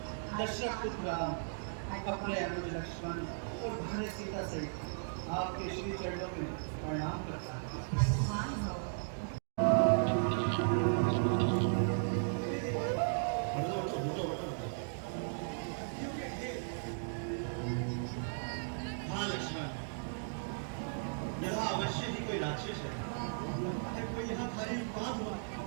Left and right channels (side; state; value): left; silent; digital silence